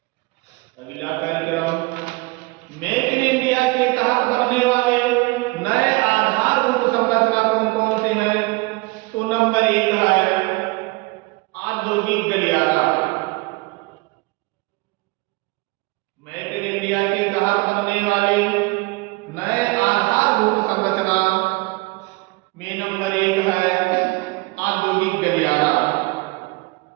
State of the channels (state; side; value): quieter; left; 24.5 dB